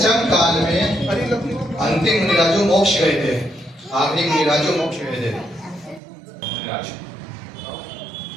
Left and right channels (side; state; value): left; drops out; at 6.0 s